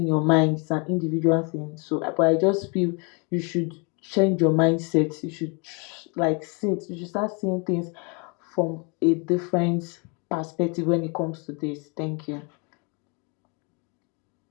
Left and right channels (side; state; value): right; quieter; 33.0 dB